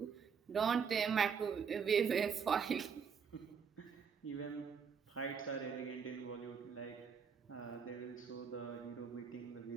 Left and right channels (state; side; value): quieter; left; 6.5 dB